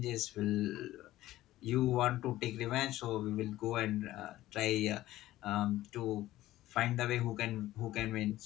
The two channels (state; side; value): quieter; right; 15.4 dB